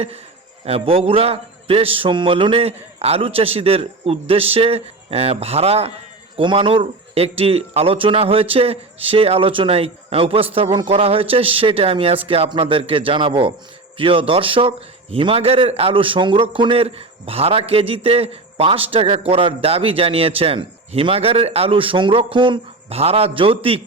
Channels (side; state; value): left; quieter; 3.3 dB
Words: বগুড়া প্রেস সম্মেলনে আলু চাষিদের উদ্দেশ্যে ভাড়া কমানোর একটি আলোচনা হয়েছে। সেই আলোচনায় উপস্থাপন করা হয়েছে, সেটা আমি আজকে আপনাদেরকে জানাবো। প্রিয় দর্শক, হিমাগারের আলু সংরক্ষণের ভাড়া কেজিতে 5 টাকা করার দাবি জানিয়েছেন। হিমাগারের আলু সংরক্ষণ ভাড়া যৌক্তিক